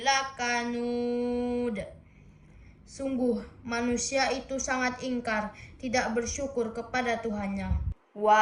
Sungguh manusia itu sangat ingkar, tidak bersyukur kepada Tuhannya.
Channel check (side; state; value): both; identical; correlation 1.00